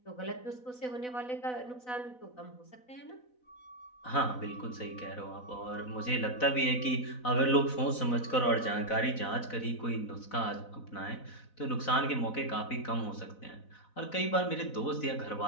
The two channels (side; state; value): right; late; 4.0 ms